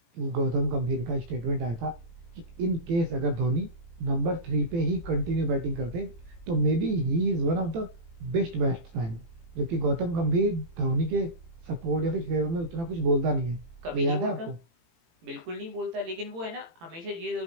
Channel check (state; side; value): late; left; 18 ms